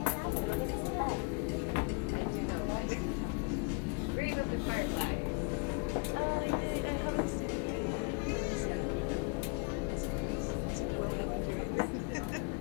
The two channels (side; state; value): right; quieter; 35.0 dB